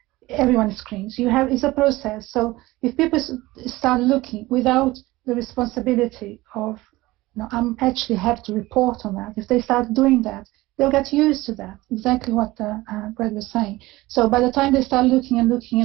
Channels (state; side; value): quieter; left; 19.1 dB